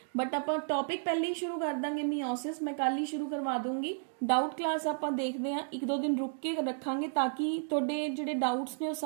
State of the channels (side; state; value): left; silent; digital silence